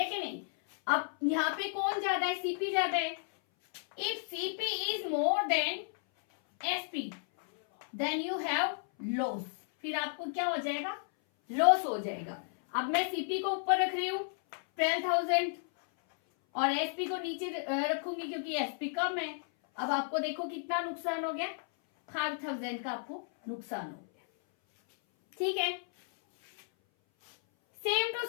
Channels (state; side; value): silent; right; 56 dB below the other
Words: कि नहीं? अब यहाँ पे कौन ज्यादा है? सीपी ज्यादा है। If CP is more than SP then you have loss. फिर आपको क्या हो जाएगा? लॉस हो जाएगा। अब मैं सीपी को ऊपर रख रही हूं 12,000 और एसपी को नीचे रखूंगी क्योंकि एसपी कम है। अब आपको देखो कितना नुकसान हो गया? 5,000 का आपको नुकसान हो गया। ठीक है, सेम टू